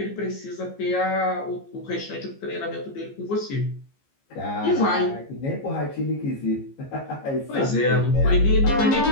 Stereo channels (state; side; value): late; right; 15 ms